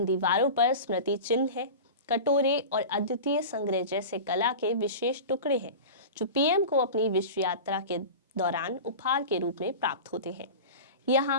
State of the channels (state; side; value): inverted; both; correlation -0.31